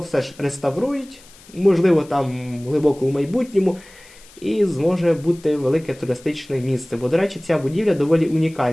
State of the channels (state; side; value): noise; left; hiss, 24 dB below the sound